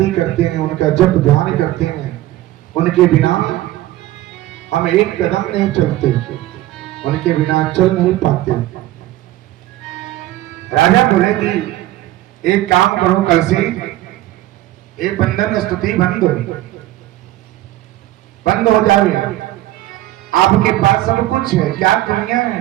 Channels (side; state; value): left; quieter; 15.4 dB